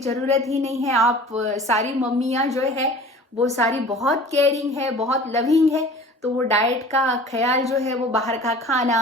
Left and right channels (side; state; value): both; normal; correlation 0.43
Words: ही नहीं है। आप सारी मम्मियाँ जो है वो सारी बहुत केयरिंग है, बहुत लविंग है, तो वो डाइट का ख्याल जो है वो बाहर का खाना,